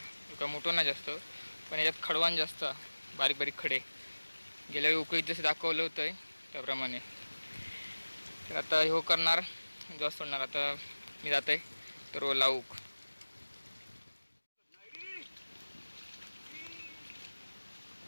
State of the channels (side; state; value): both; inverted; correlation -1.00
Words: एका मोठं नाही जास्त, पण याच्यात खडवान जास्त, बारीक बारीक खडे. गेल्या वेळी उकळीत जसे दाखवलं होतं त्याप्रमाणे. तर आता हे करणार, जास्त सोडणार. आता मी जात आहे तर लावूक.